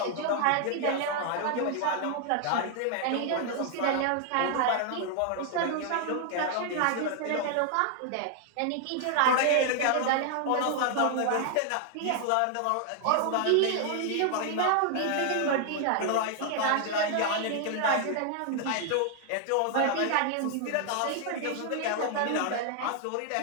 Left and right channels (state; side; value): different; both; correlation 0.00